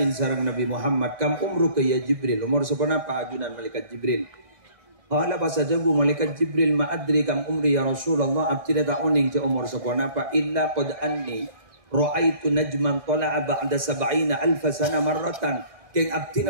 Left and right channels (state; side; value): late; left; 1.6 ms